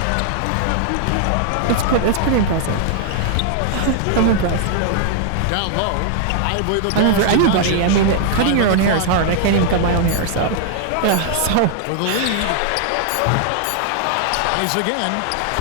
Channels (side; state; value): both; different; correlation 0.00